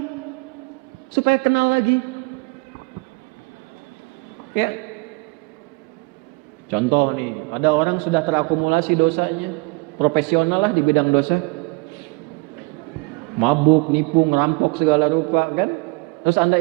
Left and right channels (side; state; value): left; quieter; 27.3 dB